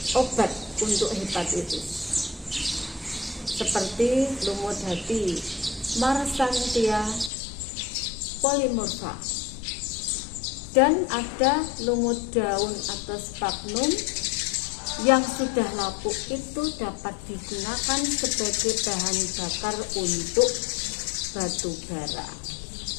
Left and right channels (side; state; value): right; drops out; at 7.3 s